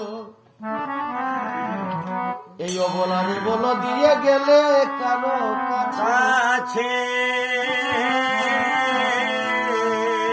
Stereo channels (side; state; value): both; identical; correlation 1.00